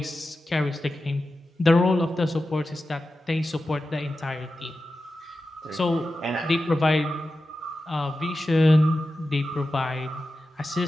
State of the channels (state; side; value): normal; both; correlation 0.92